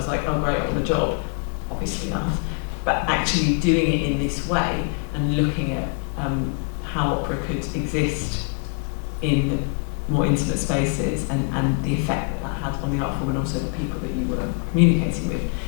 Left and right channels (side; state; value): right; quieter; 35.6 dB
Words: like, oh great, I want a job, obviously that, but actually doing it in this way and looking at how opera could exist in more intimate spaces and the effect that had on the art form and also the people that you were communicating with.